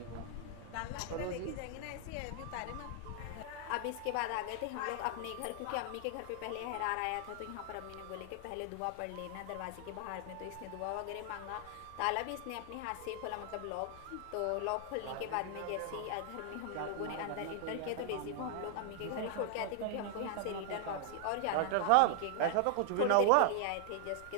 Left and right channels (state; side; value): different; both; correlation 0.00